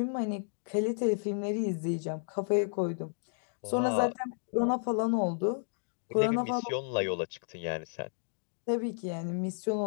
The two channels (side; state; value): right; silent; digital silence